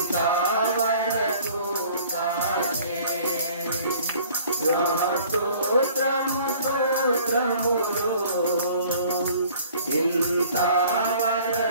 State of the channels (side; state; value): both; inverted; correlation -0.53